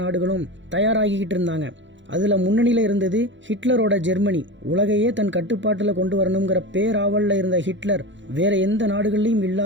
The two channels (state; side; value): late; left; 0.54 ms